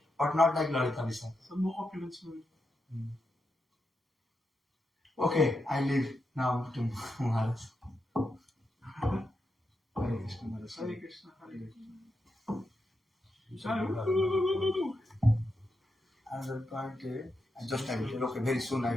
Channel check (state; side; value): normal; both; correlation 0.86